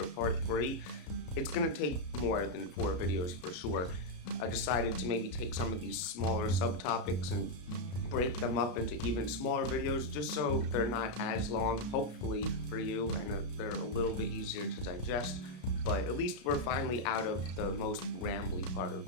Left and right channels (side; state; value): right; late; 33 ms